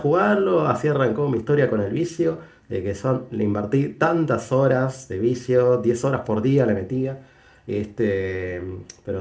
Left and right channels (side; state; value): both; identical; correlation 1.00